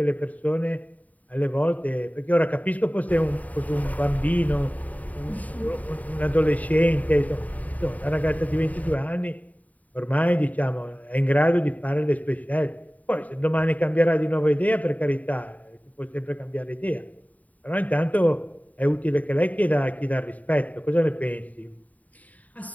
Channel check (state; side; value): late; right; 0.072 ms